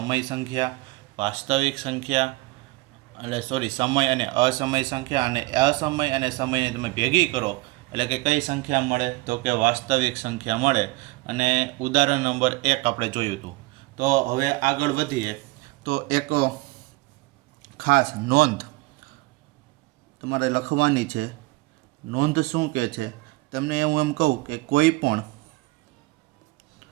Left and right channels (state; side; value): quieter; left; 22.3 dB